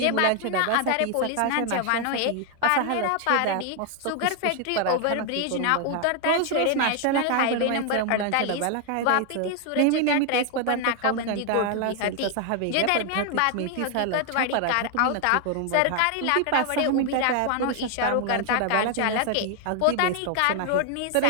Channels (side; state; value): both; different; correlation 0.00